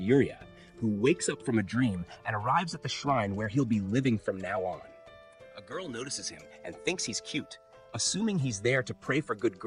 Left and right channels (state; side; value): identical; both; correlation 1.00